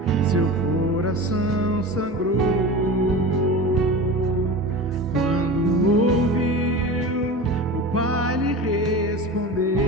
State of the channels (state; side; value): normal; both; correlation 0.31